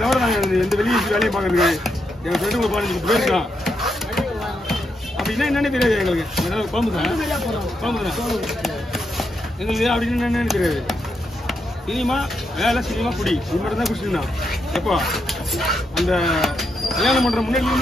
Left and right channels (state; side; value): normal; both; correlation 0.82